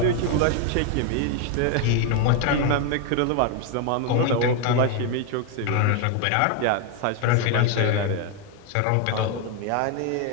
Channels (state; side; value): different; both; correlation 0.01